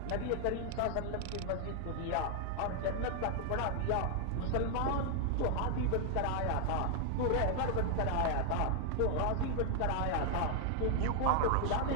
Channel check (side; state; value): both; different; correlation 0.00